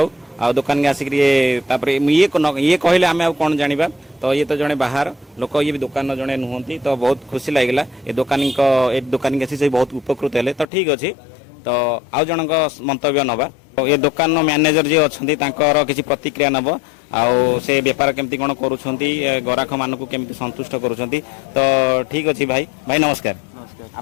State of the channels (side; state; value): right; drops out; at 10.7 s